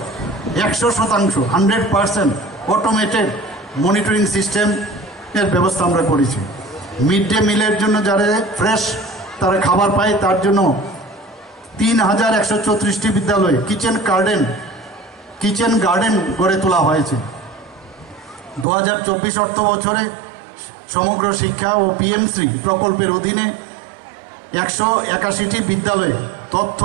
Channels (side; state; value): left; drops out; at 18.7 s